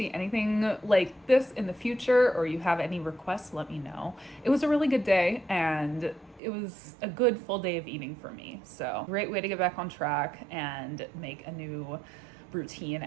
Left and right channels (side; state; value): left; drops out; at 6.4 s